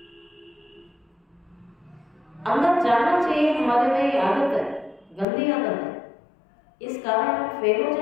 अंदर जाना चाहिए, हमारे में ये आदत है, गंदी आदत है, इस कारण हम फेल हो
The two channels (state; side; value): drops out; right; at 5.2 s